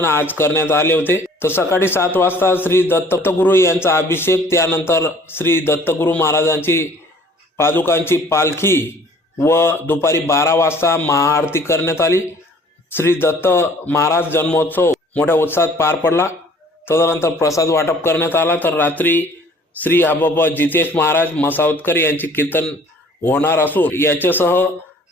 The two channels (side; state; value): both; normal; correlation 0.54